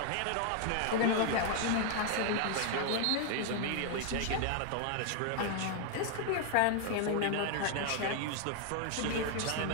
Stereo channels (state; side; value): different; both; correlation 0.00